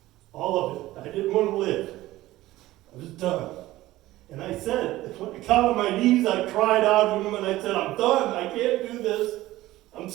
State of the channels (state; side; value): quieter; left; 16.6 dB